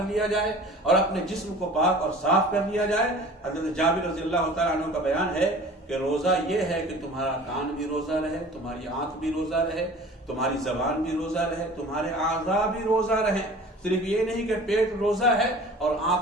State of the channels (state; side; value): normal; both; correlation 0.43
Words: لیا جائے، اور اپنے جسم کو پاک اور صاف کر لیا جائے۔ حضرت جابر رضی اللہ تعالیٰ عنہ کا بیان ہے کہ روزہ یہ ہے کہ تمہارا کان بھی روزہ رہے، تمہاری آنکھ بھی روزہ رہے، تمہاری زبان بھی روزہ رہے، تمہارے اعضاء بھی روزہ رہے۔ صرف یہ نہیں کہ پیٹ روزہ ہے اور